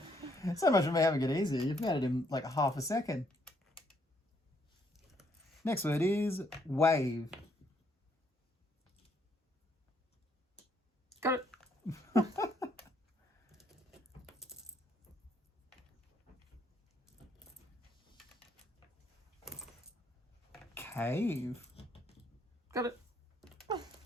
So much for me having it easy. You've made it in like half a second. Next word is wave. Got it. Cave. Got it.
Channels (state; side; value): normal; both; correlation 0.70